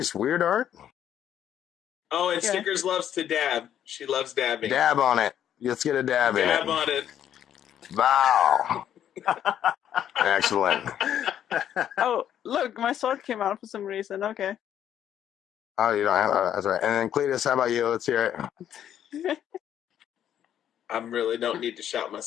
weird art. Oh, and Yeah. Snickers loves to dab. She loves dabbing. Dab on it. Let's get a dab in Dab it. on it. Wow. Excellent. Oh, look, my sword came out for some reason. Okay. Oh, you don't have that's right. And then Cletus, how about you? Let's hear it. I really don't need to shout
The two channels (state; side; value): quieter; right; 10.2 dB